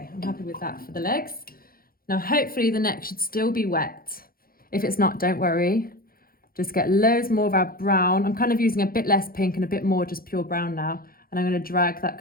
I'm happy with that for the legs. Now, hopefully the neck should still be wet. If it's not, don't worry. Just get loads more of our brown. I'm kind of using a bit less pink and a bit more just pure brown now. And I'm going to drag that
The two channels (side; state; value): right; late; 0.42 ms